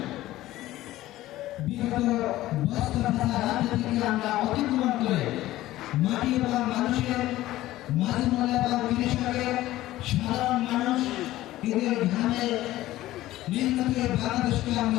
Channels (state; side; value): quieter; right; 15.7 dB